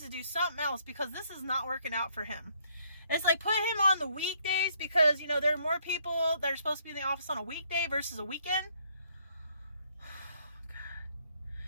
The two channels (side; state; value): both; inverted; correlation -0.67